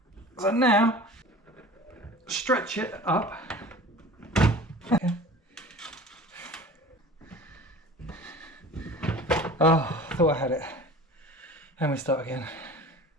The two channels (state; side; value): normal; both; correlation 0.41